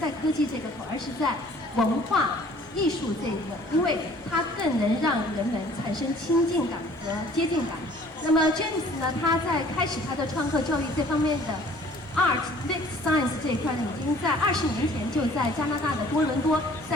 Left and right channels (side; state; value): both; normal; correlation 0.53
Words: 科技这个口，而是在文化艺术这一个，因为它更能让人们产生亲近感和接近感。那么 James 呢，他在开始他的创客教育这方面的 Art Mix Science 这一块呢，已经在20年前就在加拿大的多伦多